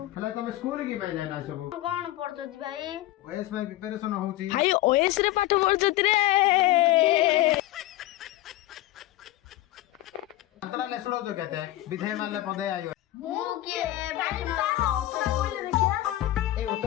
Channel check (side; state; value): right; quieter; 15.7 dB